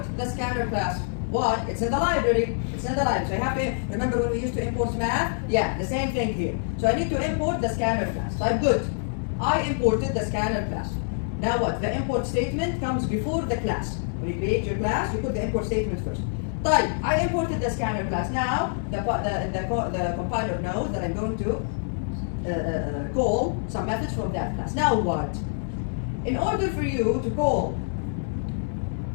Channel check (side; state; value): right; silent; 59 dB below the other